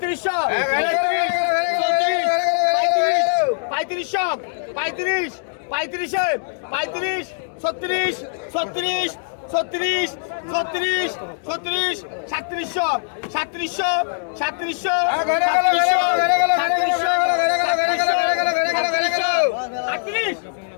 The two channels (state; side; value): silent; right; digital silence